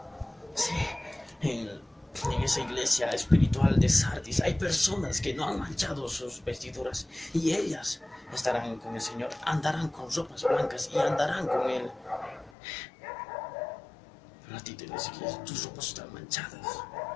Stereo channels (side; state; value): right; drops out; at 12.5 s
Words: Sí, en esa iglesia espiritual de Sardis hay personas que no han manchado sus vestiduras y ellas estarán con el Señor, andarán con ropas blancas y andarán con Él. Pero a ti te dice que tus ropas están manchadas.